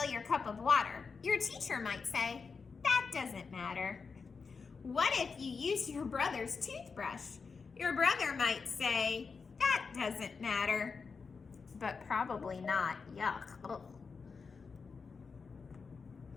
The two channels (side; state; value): right; quieter; 5.1 dB